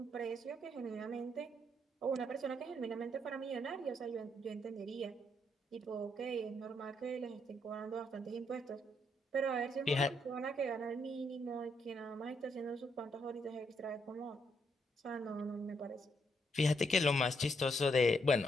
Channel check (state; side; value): normal; both; correlation 0.75